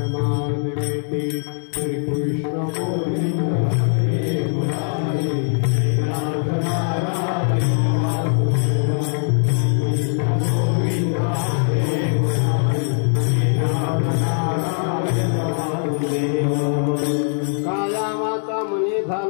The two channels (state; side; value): silent; right; 65 dB below the other